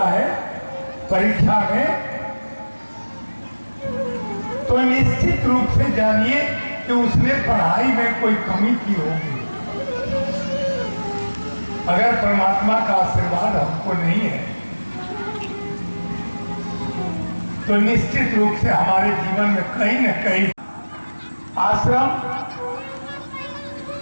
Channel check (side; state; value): both; inverted; correlation -1.00